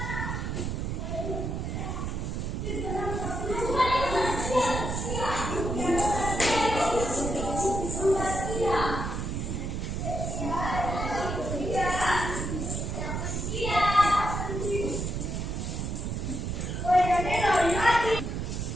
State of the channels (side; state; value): right; noise; rumble, 3 dB below the sound